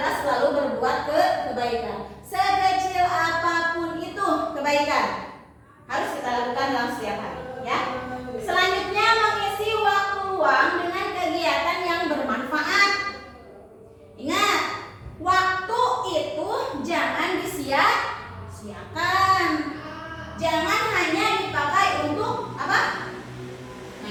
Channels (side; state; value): both; identical; correlation 1.00